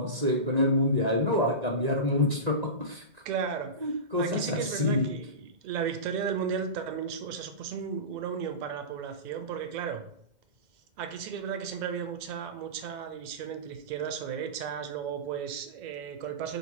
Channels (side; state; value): left; late; 2.1 ms